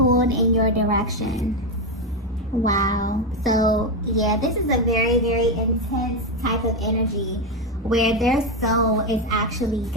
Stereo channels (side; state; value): both; normal; correlation 0.09